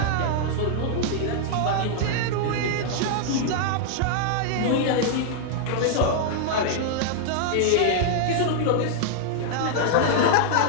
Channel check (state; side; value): different; both; correlation -0.01